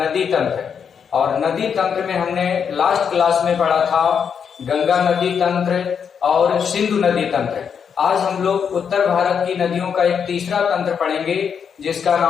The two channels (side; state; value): right; quieter; 7.1 dB